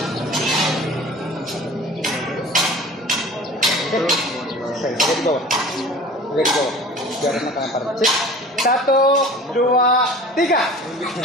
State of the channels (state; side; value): normal; both; correlation 0.42